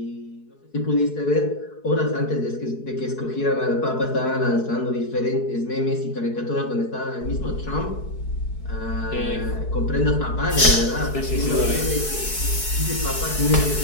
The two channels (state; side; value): late; right; 4.7 ms